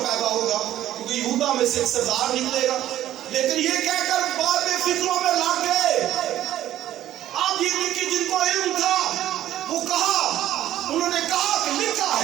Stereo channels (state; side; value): quieter; left; 12.9 dB